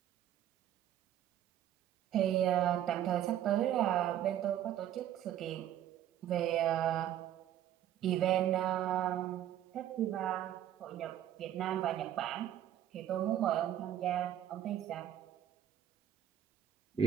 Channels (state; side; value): quieter; left; 11.3 dB